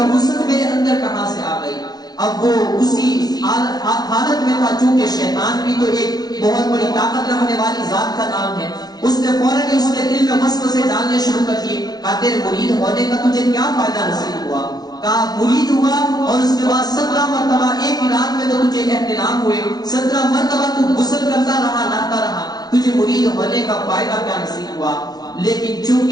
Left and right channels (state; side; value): late; right; 0.19 ms